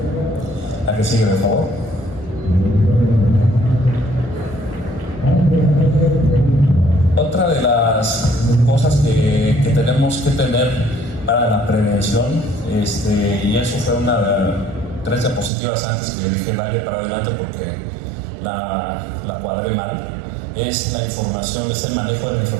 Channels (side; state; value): left; drops out; at 15.5 s